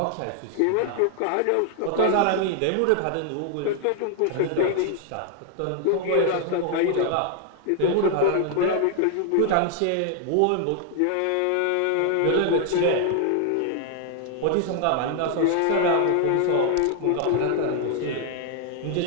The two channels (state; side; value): different; both; correlation 0.00